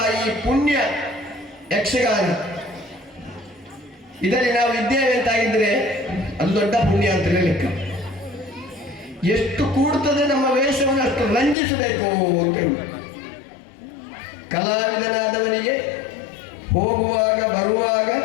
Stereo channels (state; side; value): drops out; right; at 11.6 s